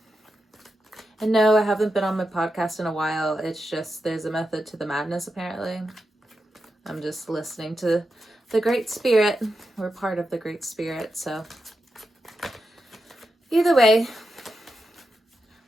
And no, I haven't been on my podcast in a while. It's just there's a method to the madness, apparently. I'm just listening to the Great Spirit. We're part of the Great Spirit, so either way,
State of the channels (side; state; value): both; normal; correlation 0.88